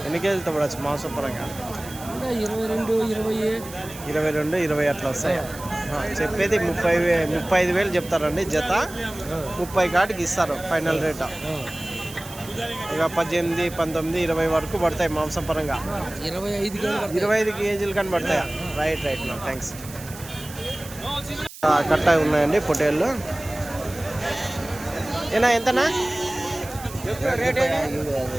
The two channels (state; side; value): noise; right; hiss, 15 dB below the sound